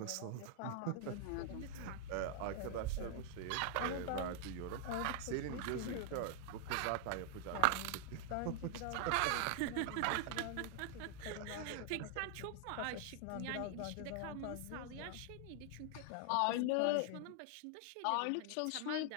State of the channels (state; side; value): different; both; correlation 0.00